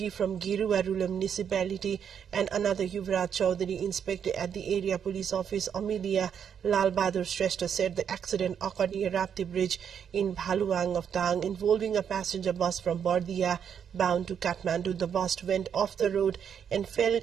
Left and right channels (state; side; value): quieter; left; 8.0 dB